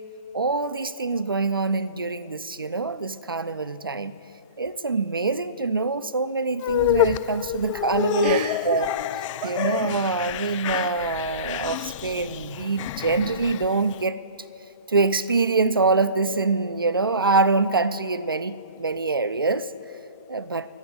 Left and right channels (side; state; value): both; inverted; correlation -0.39